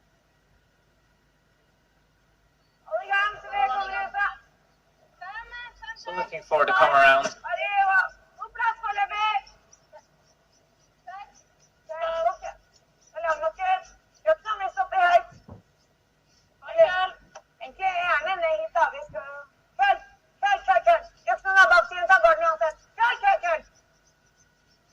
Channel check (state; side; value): identical; both; correlation 1.00